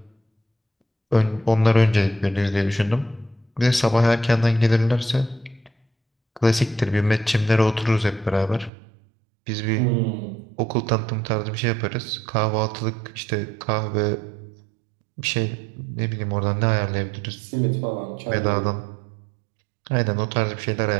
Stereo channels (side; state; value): left; drops out; at 8.7 s